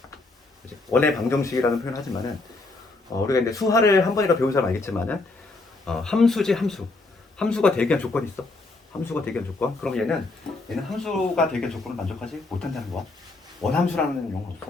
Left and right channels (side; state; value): right; quieter; 3.3 dB